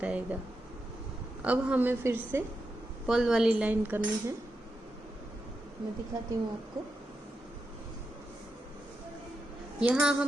आएगा। अब हमें फिर से पर्ल वाली लाइन करनी है, मैं दिखाती हूँ आपको। यहाँ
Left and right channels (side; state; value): both; normal; correlation 0.87